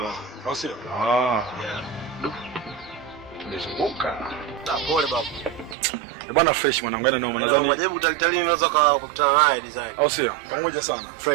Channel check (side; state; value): left; drops out; at 5.8 s